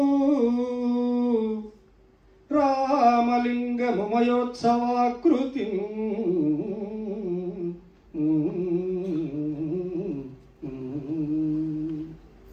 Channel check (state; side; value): identical; both; correlation 1.00